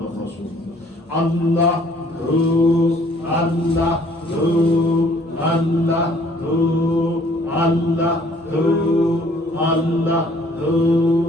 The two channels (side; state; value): both; normal; correlation 0.59